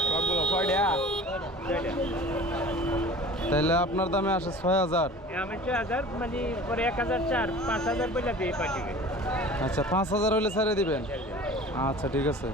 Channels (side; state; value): both; normal; correlation 0.42